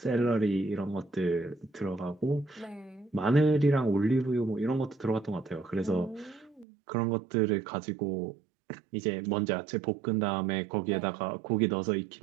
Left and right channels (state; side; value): drops out; left; at 6.7 s